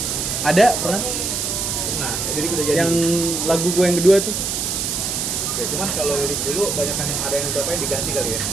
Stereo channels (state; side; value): noise; right; hiss, 1 dB below the sound